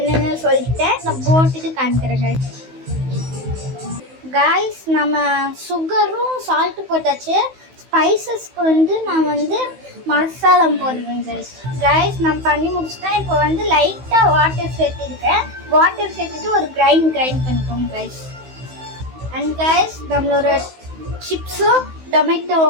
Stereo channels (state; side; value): late; left; 16 ms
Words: சொல்லிட்டேன். நான் போட்டுட்டு காமிக்கிறேன் கைஸ். நம்ம சுகரும் சால்ட்டு போட்டாச்சு. ஸ்பைசஸ்க்கு வந்து நான் வந்து மசாலா போடுவேன் கைஸ். நான் பண்ணி முடிச்சுட்டேன். இப்போ வந்து லைட்டாக வாட்டர் சேர்த்துருக்கேன். வாட்டர் சேர்த்துட்டு ஒரு கிரைண்ட் பண்ணிக்கோங்க கைஸ். அண்ட் கைஸ், நம்மளோட சிப்ஸும் டொமேட்டோ